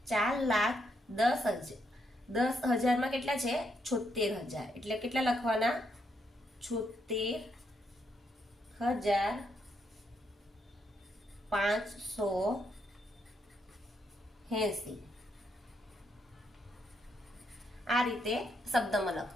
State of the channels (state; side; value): normal; both; correlation 0.78